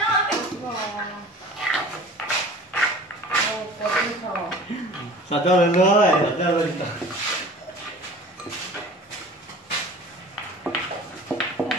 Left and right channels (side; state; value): both; normal; correlation 0.43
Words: Sao cho lên nữa, sao cho lên.